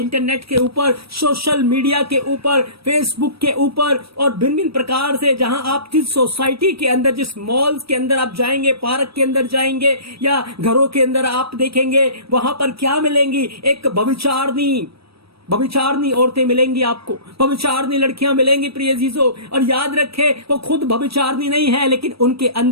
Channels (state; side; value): late; left; 0.76 ms